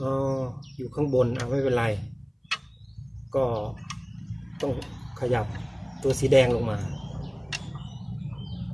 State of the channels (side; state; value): both; identical; correlation 1.00